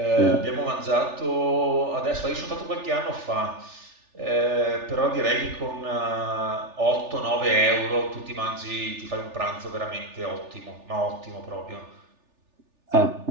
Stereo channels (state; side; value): late; left; 3.4 ms